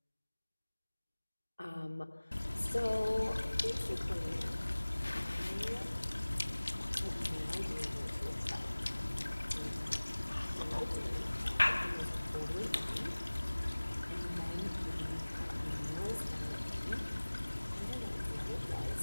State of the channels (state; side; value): inverted; both; correlation -1.00